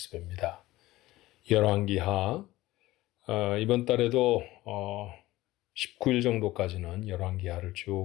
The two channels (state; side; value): quieter; right; 17.5 dB